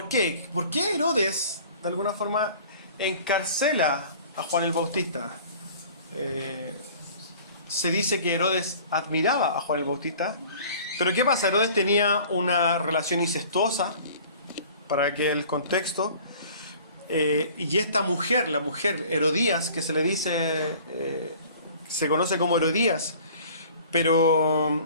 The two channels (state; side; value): inverted; both; correlation -0.48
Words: qué? ¿Por qué Herodes, de alguna forma, encarcela a Juan el Bautista? Se dice que Herodes admiraba a Juan el Bautista, pero ¿qué pasa? Herodes tenía una relación incestuosa, para que el contexto, y esta mujer, la mujer Herodías, que se le dice, se conoce como Herodías,